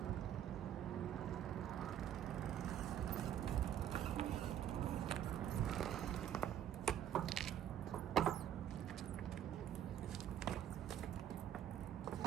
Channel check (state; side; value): quieter; left; 10.4 dB